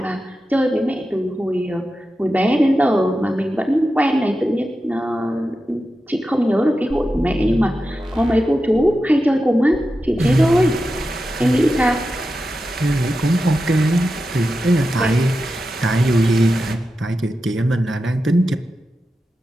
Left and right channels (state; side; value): normal; both; correlation 0.91